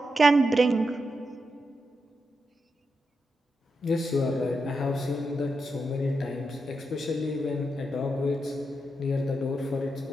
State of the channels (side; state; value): both; normal; correlation 0.86